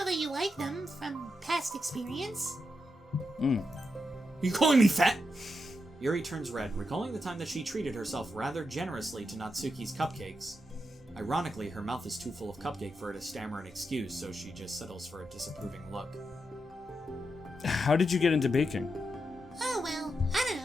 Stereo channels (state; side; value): normal; both; correlation 0.85